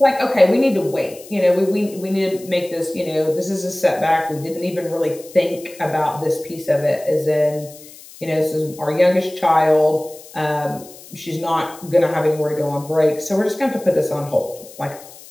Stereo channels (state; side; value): noise; left; hiss, 19 dB below the sound